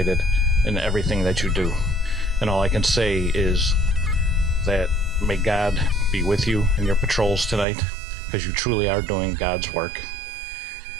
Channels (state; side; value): drops out; left; at 7.7 s